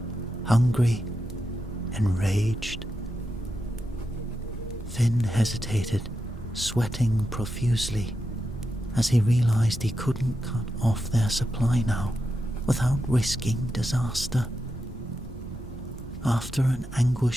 hungry, enraged. Finn hesitated, sweating profusely, as he realized he couldn't cut off their supply now without risking disaster. After an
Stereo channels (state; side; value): normal; both; correlation 0.87